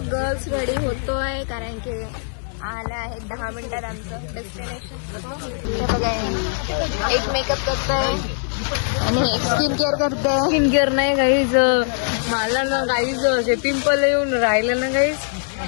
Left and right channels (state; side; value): silent; right; digital silence